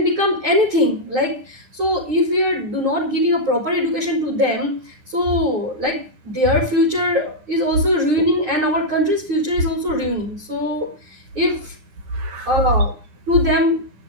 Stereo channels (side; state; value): left; late; 9.8 ms